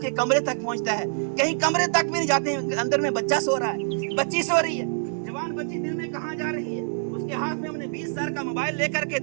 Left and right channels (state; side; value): silent; left; 61 dB below the other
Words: کے کمرے تک پہنچتا ہے، کہیں کمرے تک بھی نہیں جاتے، اندر میں بچہ سو رہا ہے، بچی سو رہی ہے. جوان بچی دن میں کہاں جا رہی ہے؟ اس کے ہاتھ میں ہم نے 20 سال کا موبائل لے کر کے